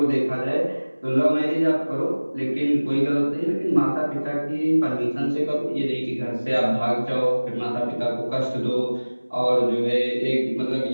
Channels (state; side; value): inverted; both; correlation -1.00